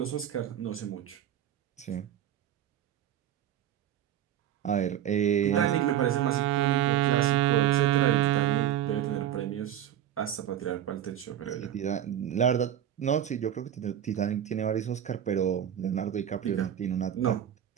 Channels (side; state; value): left; quieter; 10.7 dB